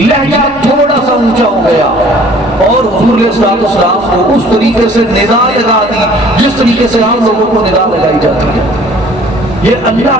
تھوڑا سا اونچا ہو گیا، اور حضور علیہ السلام کو اس طریقے سے ندا لگا دی جس طریقے سے عام لوگوں کو ندا لگائی جاتی ہے۔ یہ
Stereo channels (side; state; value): both; normal; correlation 0.53